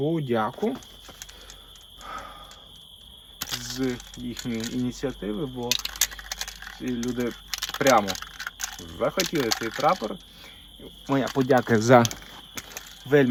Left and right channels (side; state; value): both; identical; correlation 1.00